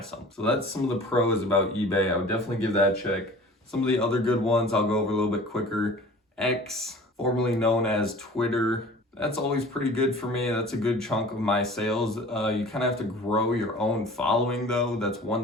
So that's some of the pros about eBay. I would definitely give that a check. Some of the other good ones I'll go over a little bit quicker. X, formerly known as Twitter. That's always pretty good for me. That's a good chunk of my sales. You kind of have to grow your own following though. That's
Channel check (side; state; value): both; normal; correlation 0.43